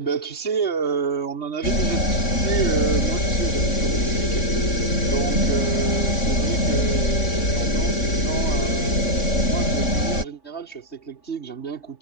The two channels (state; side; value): late; right; 3.6 ms